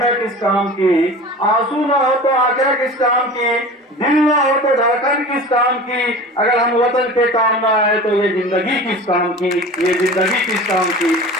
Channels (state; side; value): normal; both; correlation 0.37